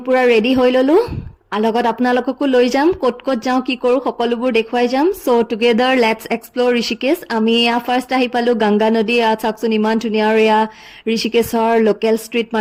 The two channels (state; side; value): identical; both; correlation 1.00